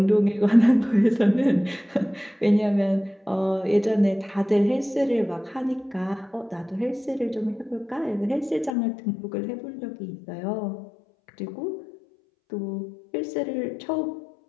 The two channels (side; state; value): right; drops out; at 8.8 s